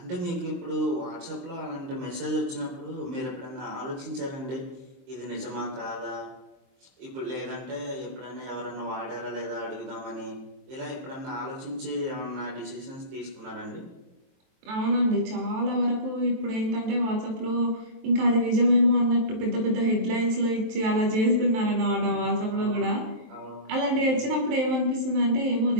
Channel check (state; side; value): late; left; 23 ms